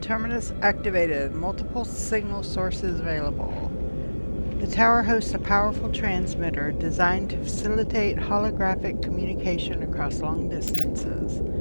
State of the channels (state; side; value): inverted; both; correlation -1.00